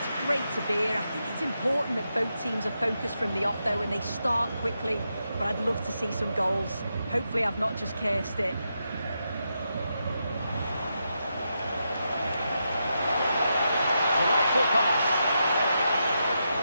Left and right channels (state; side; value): inverted; both; correlation -0.85